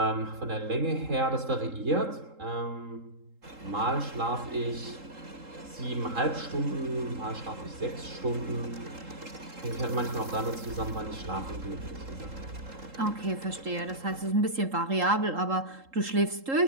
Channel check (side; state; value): left; late; 3.8 ms